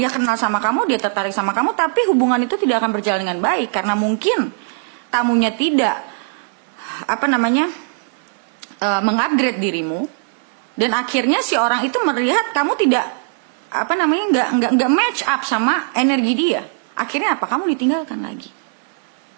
kenal sama kamu, dia tertarik sama kamu, tapi hubungan itu tidak akan berjalan dengan baik karena mungkin tamunya tidak mengupgrade dirimu, dan akhirnya si orang itu melihat kamu tidak nggak match up sama energi dia. Akhirnya apa? Kamu ditinggalkan lagi.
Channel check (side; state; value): left; silent; 58 dB below the other